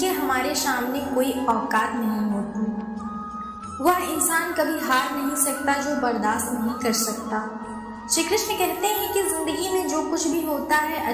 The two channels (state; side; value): identical; both; correlation 1.00